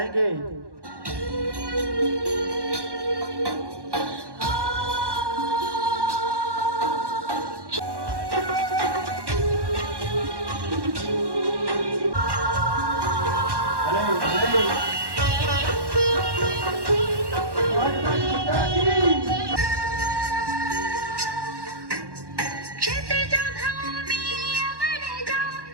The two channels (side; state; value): left; late; 1.1 ms